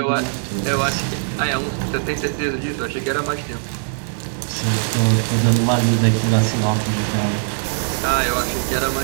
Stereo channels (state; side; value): silent; left; digital silence